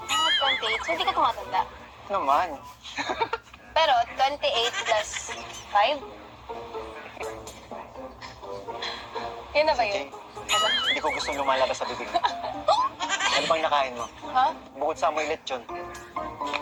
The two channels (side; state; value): both; identical; correlation 1.00